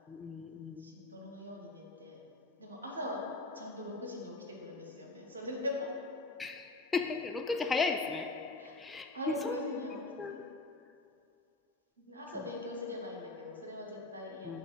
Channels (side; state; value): right; quieter; 3.0 dB